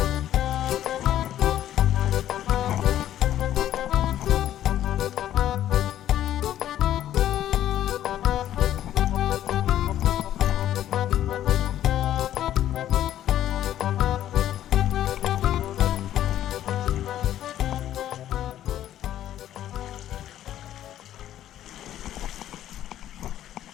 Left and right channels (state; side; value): quieter; right; 12.0 dB